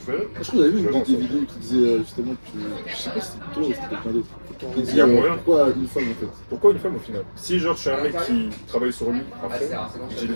je vais. Je crois que j'avais vu une des vidéos qui disait justement que. Je sais pas si c'était toi ou c'était quelqu'un d'autre. Qui Il disait y a moyen. pourquoi une femme en fait. Pourquoi une femme au final? Si genre je suis un mec qui travaille sur lui à fond, j'ai les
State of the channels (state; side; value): inverted; both; correlation -1.00